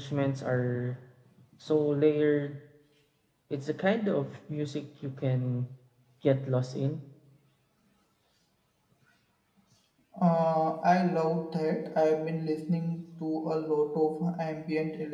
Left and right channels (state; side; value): identical; both; correlation 1.00